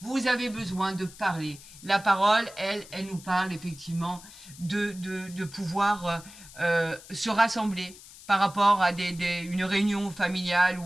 avez besoin de parler. La parole, elle nous parle effectivement de pouvoir se rassembler par rapport à une réunion familiale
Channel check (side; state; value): left; noise; hiss, 19 dB below the sound